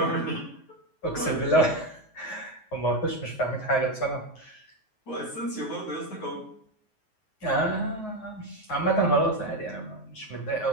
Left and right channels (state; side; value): late; right; 9.3 ms